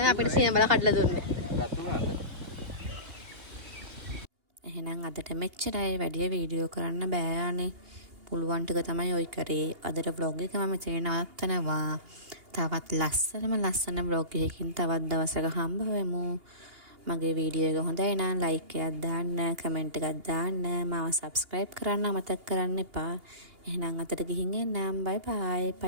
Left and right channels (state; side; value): late; left; 2.8 ms